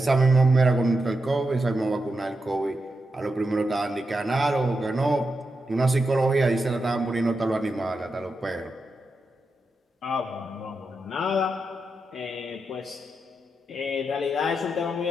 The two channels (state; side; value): normal; both; correlation 0.87